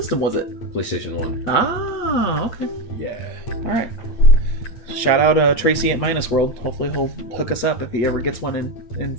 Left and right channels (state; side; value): late; right; 8.6 ms